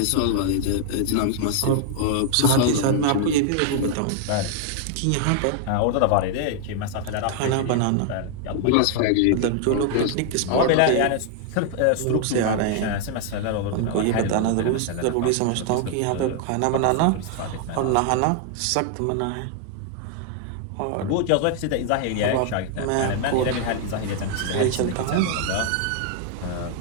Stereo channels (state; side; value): different; both; correlation 0.00